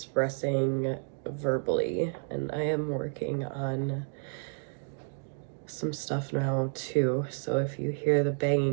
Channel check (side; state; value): left; silent; 57 dB below the other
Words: verbally, and I am working on some stuff now too. So if you hear the